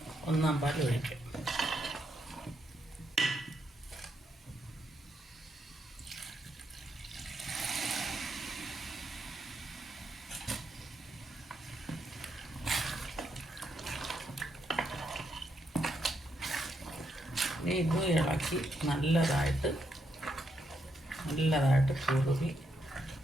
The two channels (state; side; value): normal; both; correlation 0.79